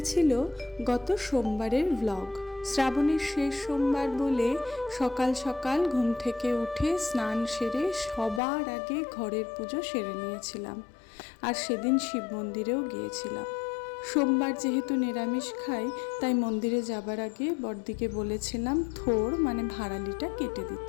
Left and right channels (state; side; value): drops out; right; at 8.4 s